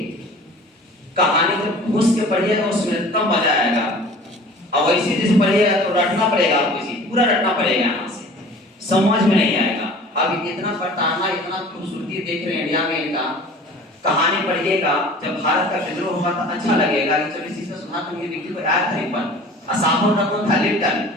कहानी जब घुस के पढ़िएगा उसमें तब मजा आएगा। अब ऐसे जैसे पढ़िएगा तो रटना पड़ेगा आपको, इसी पूरा रटना पड़ेगा यहाँ से, समझ में नहीं आएगा। अब इतना पटाना, इतना खूबसूरती देख रहे हैं इंडिया में इनका। कहानी पढ़िएगा, जब भारत का विद्रोह हुआ था अच्छा लगेगा कि चलो इसी से सुना तो ये व्यक्ति को याद था। एक बार असामो रकम था लिप्टन।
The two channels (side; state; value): both; normal; correlation 0.44